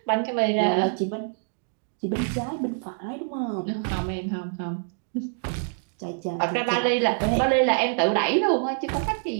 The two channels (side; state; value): left; silent; digital silence